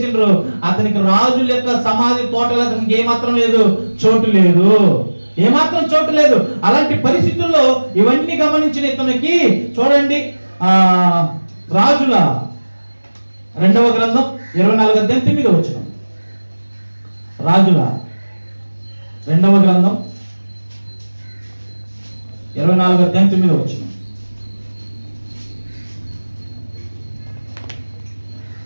అతనికి రాజుల యొక్క సమాధి తోటలో అతనికి ఏమాత్రం లేదు, చోటు లేదు, ఏమాత్రం చోటు లేదు. అలాంటి పరిస్థితుల్లో ఇవన్నీ గమనించిన ఇతనికి చూడండి, రాజుల 2వ గ్రంథం 24వ అధ్యాయం 9వ వచనం. రాజుల 2వ గ్రంథం 24వ అధ్యాయం 9వ వచనం.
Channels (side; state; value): both; inverted; correlation -1.00